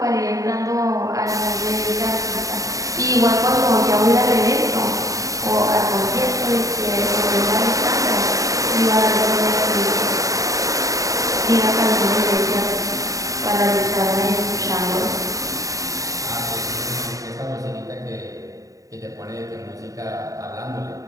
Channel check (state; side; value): late; left; 0.16 ms